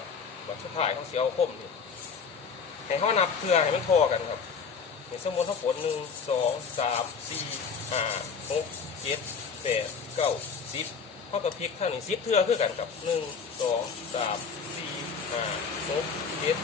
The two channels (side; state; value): right; quieter; 5.9 dB